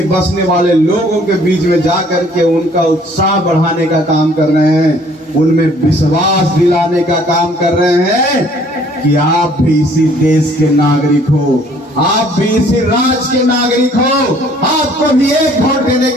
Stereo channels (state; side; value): normal; both; correlation 0.58